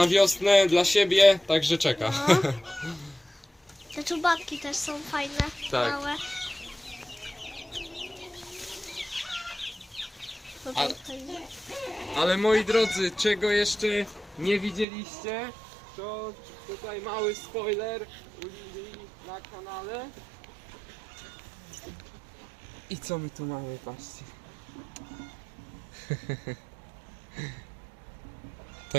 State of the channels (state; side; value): drops out; left; at 14.9 s